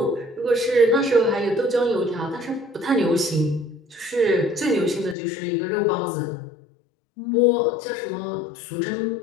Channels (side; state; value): right; drops out; at 5.2 s